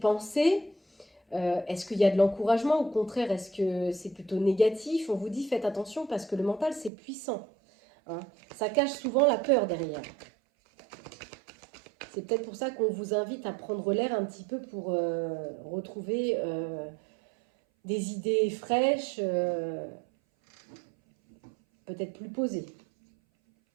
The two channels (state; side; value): drops out; left; at 6.9 s